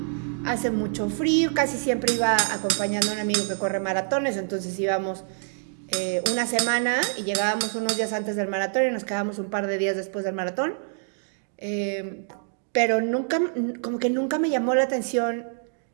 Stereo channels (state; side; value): silent; left; digital silence